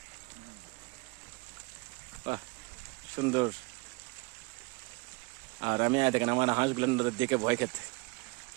বাহ, সুন্দর। আর আমি দেখেন আমার হাঁসগুলো দেখে ভয় খেতে,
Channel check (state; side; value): quieter; left; 27.0 dB